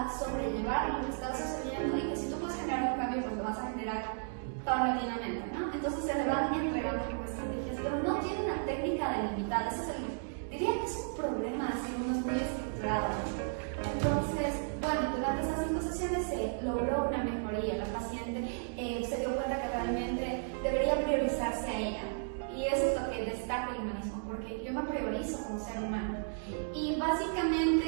sobrellevar lo que está sucediendo y que si tú puedes generar un cambio, pues lo vas a generar paulatinamente, ¿no? Entonces se le van entregando como estrategias, pero no tiene una técnica delimitada. Diría que es un problema, así uno es muy estructurado. Entonces, durante estas 5 sesiones se logró una mejoría. La paciente se dio cuenta que realmente debería priorizarse a ella. Y eso es lo que destaca el humanismo, porque yo me priorizo como ser humano. Y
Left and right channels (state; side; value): silent; left; digital silence